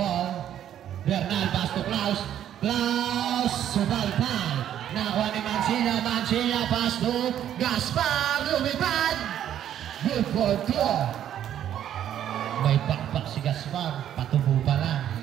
Bernal pass to Klaus. Subalpal. Nakuha ni Mansilla pass to Gaspar. Lumipad. Good for 2. May pakpak si Gaspar. Patubo pa lang.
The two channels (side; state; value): left; quieter; 10.6 dB